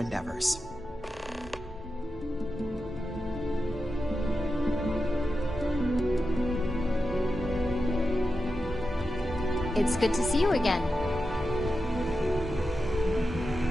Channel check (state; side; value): normal; both; correlation 0.90